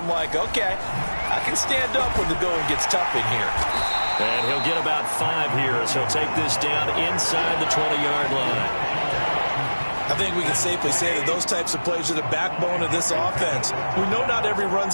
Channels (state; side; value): inverted; both; correlation -1.00